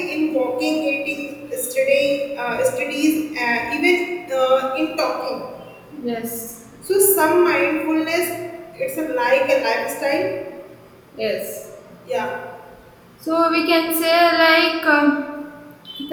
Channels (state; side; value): identical; both; correlation 1.00